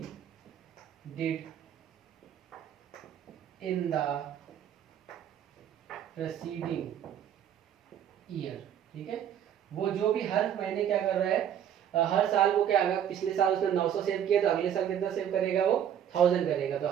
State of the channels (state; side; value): quieter; left; 9.7 dB